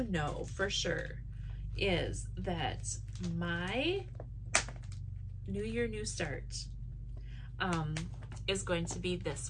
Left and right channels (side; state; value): both; identical; correlation 1.00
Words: know for sure is that my New Year, New Start is going to be this